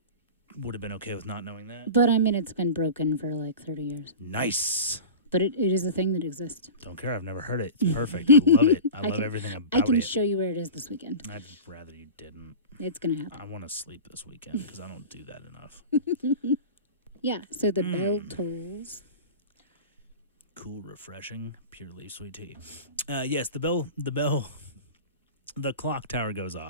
would have been okay with not knowing that. But I mean, it's been broken for like 30 years. Nice. But it is a thing that exists. Don't care. I've never heard it. It's perfect. I love it. I love everything about it. I can show you where it is this weekend. I'd rather you didn't. It's going to happen. I want to sleep this weekend because I don't do that enough. Yeah, so the bell tolls. Cool, refreshing, purely sweet tea. Yes, the clock tower goes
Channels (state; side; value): inverted; both; correlation -0.32